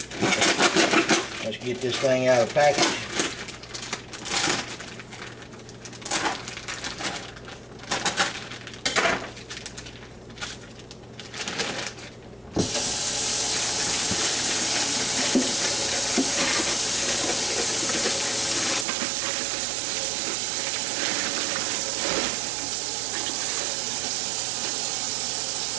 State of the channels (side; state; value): left; drops out; at 18.9 s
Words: Let's get this thing out of the package.